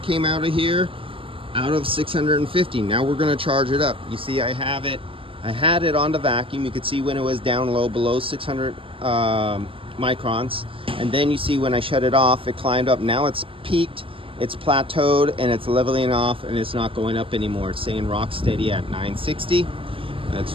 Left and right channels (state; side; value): late; left; 0.26 ms